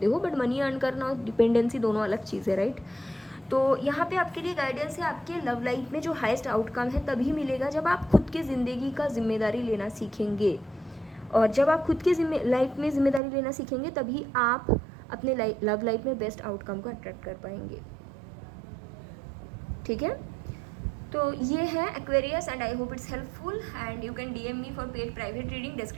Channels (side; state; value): left; drops out; at 13.2 s